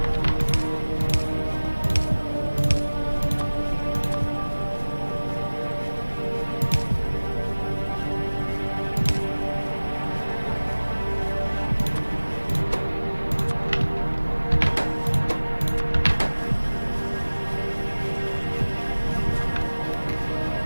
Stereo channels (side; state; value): both; inverted; correlation -1.00